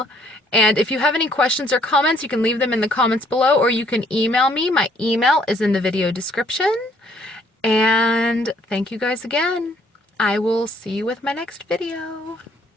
And if you have any questions or comments, you can leave them in the comments below, or you can email me. My email is in the video description. And thank you guys again. I will see you with my next video.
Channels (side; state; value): both; normal; correlation 0.64